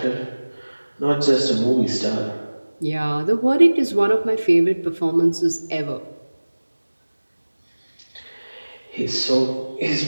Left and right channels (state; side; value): inverted; both; correlation -1.00